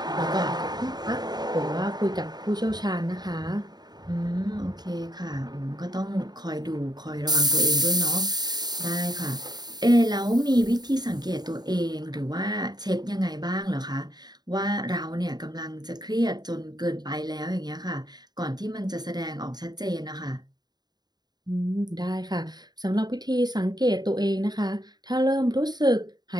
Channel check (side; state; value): left; late; 0.20 ms